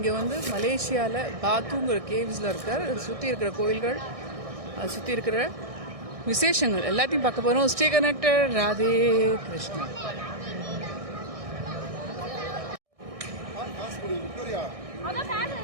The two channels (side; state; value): left; late; 1.6 ms